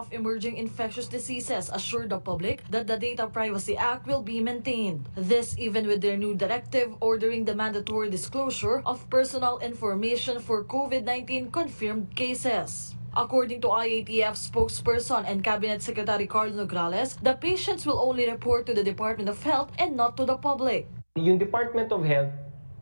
Emerging Infectious Diseases assured the public that the Data Privacy Act will be maintained. This even with their new directive ordering the mandatory disclosure of personal information for COVID-19 confirmed cases. According to IATF spokesperson and Cabinet Secretary Leonor Ordonez, the patients will only report to the Department of Health and not to the public. Yung Department of Health,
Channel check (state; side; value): inverted; both; correlation -1.00